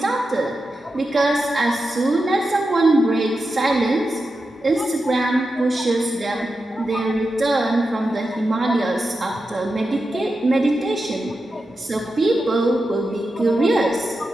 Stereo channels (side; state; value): both; normal; correlation 0.90